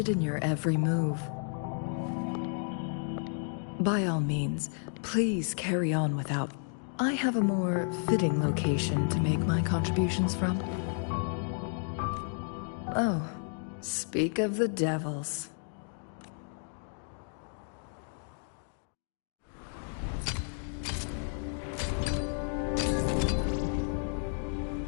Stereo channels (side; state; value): right; silent; 56 dB below the other